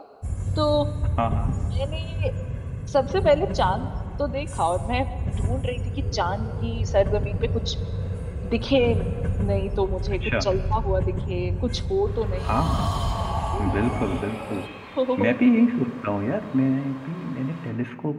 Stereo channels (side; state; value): both; identical; correlation 1.00